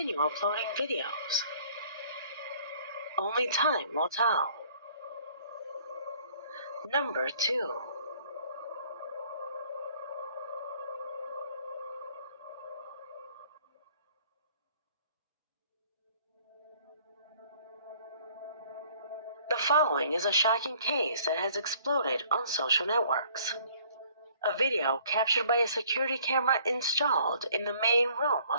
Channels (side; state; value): both; inverted; correlation -0.57